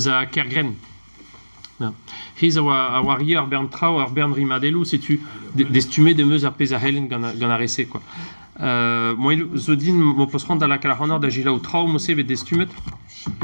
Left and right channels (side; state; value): both; inverted; correlation -1.00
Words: Kergren. Ja. Hier a warrior Bern Trau ar Bern Rimadelu si tu d'estumé de meus a pez a helen gant a rese quoi. Moi zo din mo posrand da la kalahonor da gila ou trau mo seve d'estumet.